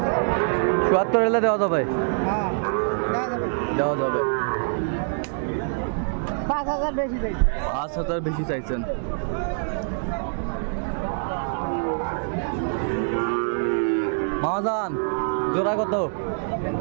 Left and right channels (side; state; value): left; silent; digital silence